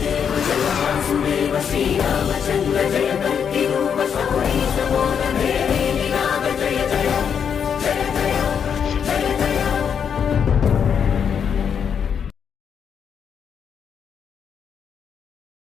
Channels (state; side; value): quieter; right; 7.4 dB